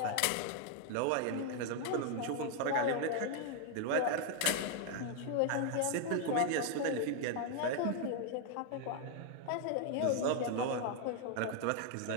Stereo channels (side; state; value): both; different; correlation 0.00